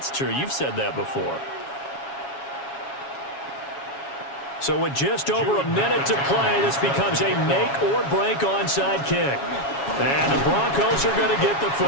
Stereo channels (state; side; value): late; right; 7.2 ms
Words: true. You've said that before. So with just over a minute to play, this becomes a make-or-break onside kick. And the Broncos are going to get the